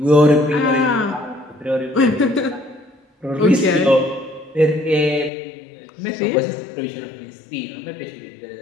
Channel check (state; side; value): drops out; right; at 5.3 s